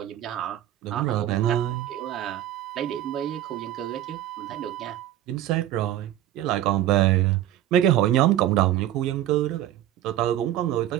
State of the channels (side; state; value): left; quieter; 12.8 dB